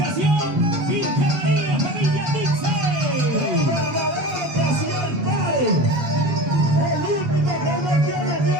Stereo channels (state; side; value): late; left; 7.3 ms